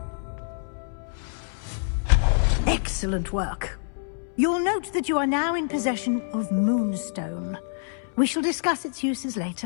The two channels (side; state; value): right; silent; 61 dB below the other